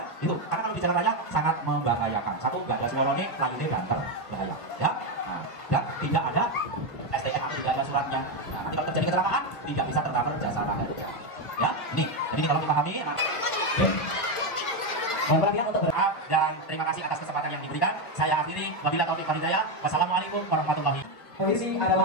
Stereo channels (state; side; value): late; right; 1.3 ms